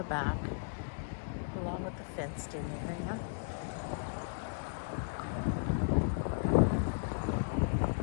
back, along with the fenced-in area.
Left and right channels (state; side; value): silent; right; digital silence